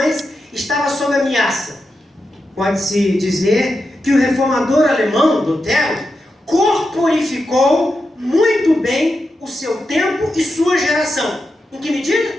estava sob ameaça. Pode-se dizer que o reformador alemão, Lutero, corporificou muito bem o seu tempo e sua geração. Em que medida?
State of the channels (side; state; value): both; normal; correlation 0.88